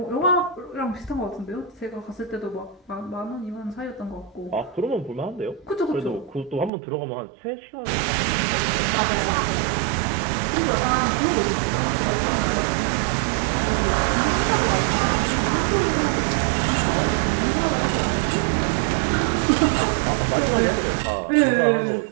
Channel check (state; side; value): drops out; left; at 6.7 s